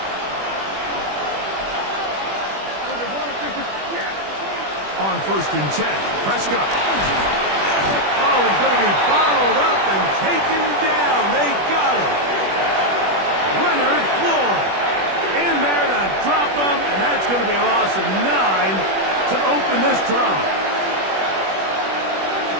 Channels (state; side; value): late; left; 21 ms